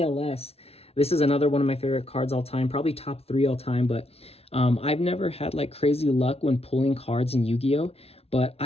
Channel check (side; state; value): right; late; 0.30 ms